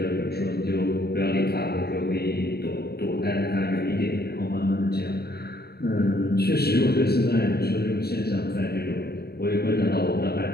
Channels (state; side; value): late; right; 0.47 ms